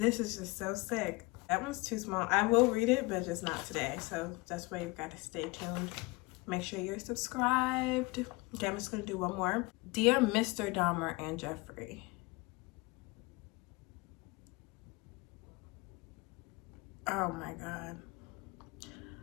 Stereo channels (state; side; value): quieter; right; 24.4 dB